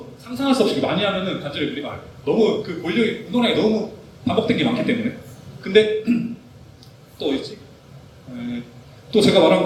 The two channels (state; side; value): identical; both; correlation 1.00